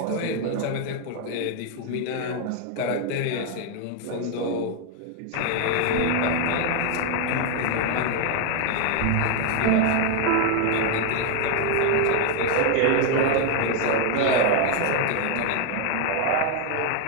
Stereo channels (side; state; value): both; different; correlation 0.00